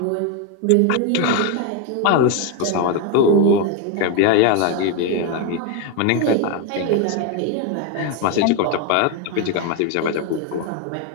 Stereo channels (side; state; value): both; different; correlation 0.01